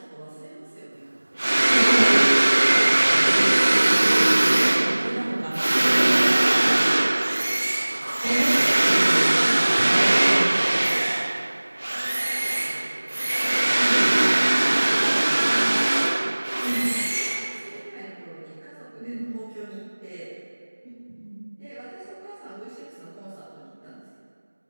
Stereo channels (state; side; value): inverted; both; correlation -1.00